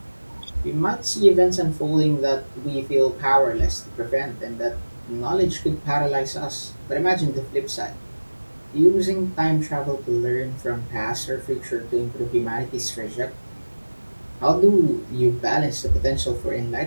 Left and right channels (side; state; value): both; inverted; correlation -1.00